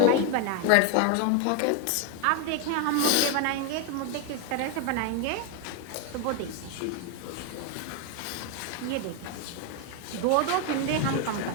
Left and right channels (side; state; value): both; different; correlation 0.01